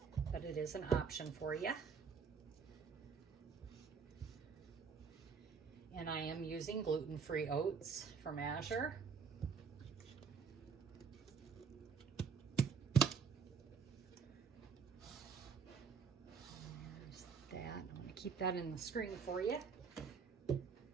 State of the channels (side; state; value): left; quieter; 5.9 dB